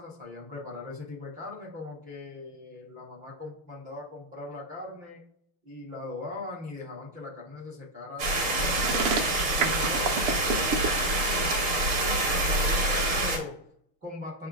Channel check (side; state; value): left; late; 6.5 ms